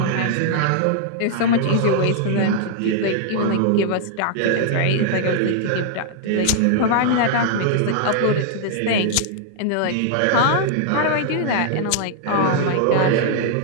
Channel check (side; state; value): both; different; correlation -0.01